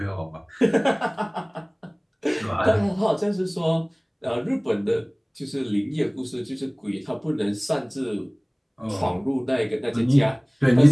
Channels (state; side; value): identical; both; correlation 1.00